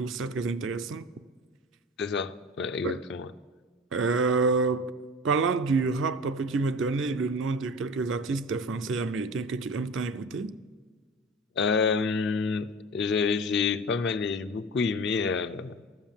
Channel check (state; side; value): normal; both; correlation 0.35